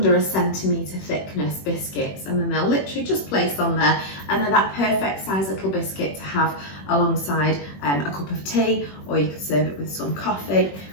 1 centimetre thickness biscuits, and then they'll literally just place on there, and they're that perfect size little biscuit to have alongside a cup of tea, or you could serve it with some coffee.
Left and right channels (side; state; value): right; late; 21 ms